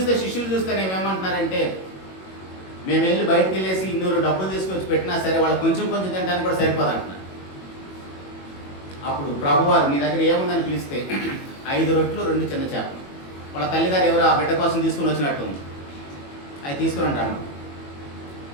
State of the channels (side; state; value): right; late; 21 ms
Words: శిష్యులు చూస్తే ఏమంటున్నారంటే, మేము వెళ్ళి బయటకు వెళ్ళేసి 200 డబ్బులు తీసుకొచ్చి పెట్టినా సరే వాళ్ళు కొంచెం కొంచెం తినడానికి కూడా సరిపోదు అంటున్నారు. అప్పుడు ప్రభువారు మీ దగ్గర ఏముందని పిలిస్తే 5 రొట్లు 2 చిన్న చేపలు. వాళ్ళ తల్లిగారు ఎవరు ఆ బిడ్డ కోసం తీసుకొని వచ్చినట్టు ఉంది. అవి తీసుకుని అంటాను.